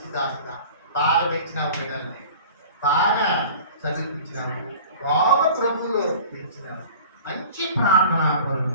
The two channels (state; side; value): inverted; both; correlation -0.41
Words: దాసుగా బాగా పెంచినావు, పిల్లల్ని బాగా చదివించినావు, బాగా ప్రభువులో పెంచినావు, మంచి ప్రార్థనా పరులు,